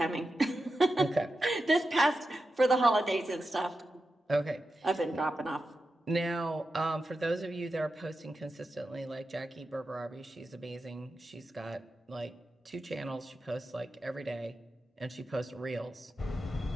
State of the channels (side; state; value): both; normal; correlation 0.90